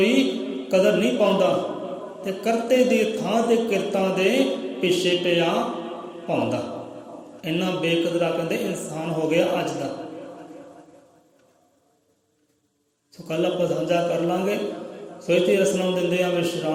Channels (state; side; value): identical; both; correlation 1.00